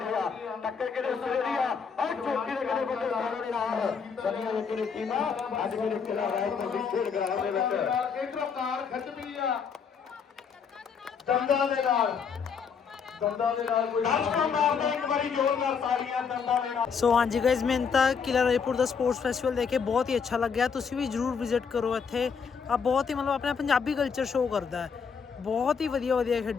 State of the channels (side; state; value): right; quieter; 6.2 dB